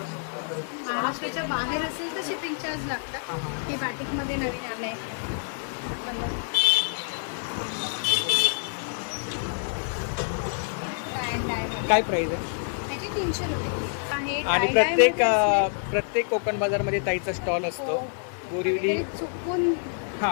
महाराष्ट्राच्या बाहेर असेल तर शिपिंग चार्ज लागतात. हे बाटिक मध्ये नवीन आलंय. काय प्राइस आहे? त्याची 300 रुपये आहे. आणि tie-dye मध्ये असले प्रत्येक कोकण बाजार मध्ये ताईचा स्टॉल असतो. बोरिवली ते चुकून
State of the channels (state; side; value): silent; right; 60 dB below the other